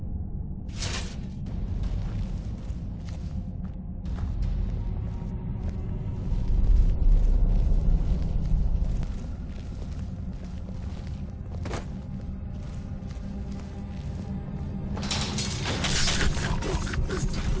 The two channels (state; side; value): identical; both; correlation 1.00